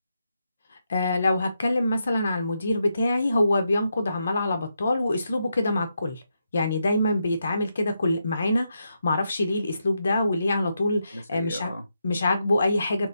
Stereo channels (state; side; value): inverted; both; correlation -0.83